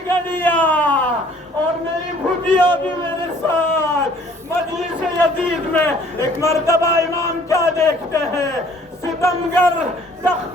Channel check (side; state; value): both; normal; correlation 0.57